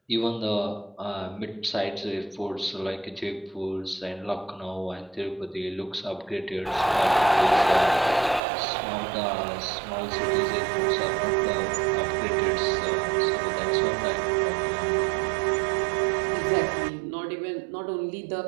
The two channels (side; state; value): left; drops out; at 8.4 s